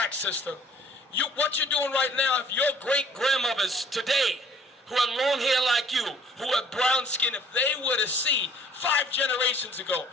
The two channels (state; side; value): normal; both; correlation 0.55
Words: sister. What you're doing right now, if your great-grandmothers today, who had long hair like you, who had brown skin, if they were to see 5 generations ago,